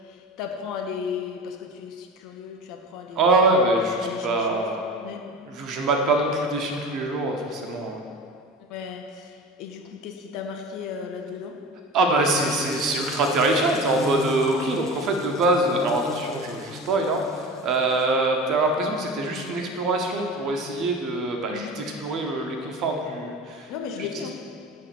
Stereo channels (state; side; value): normal; both; correlation 0.33